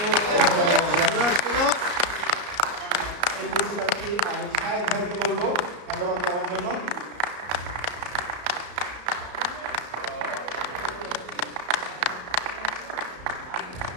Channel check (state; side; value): late; left; 34 ms